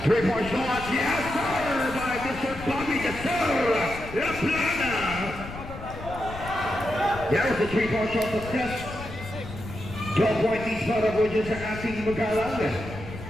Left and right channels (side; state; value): left; noise; rumble, 12 dB below the sound